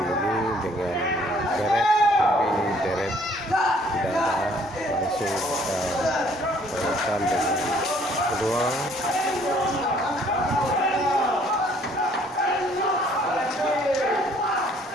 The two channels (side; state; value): both; normal; correlation 0.60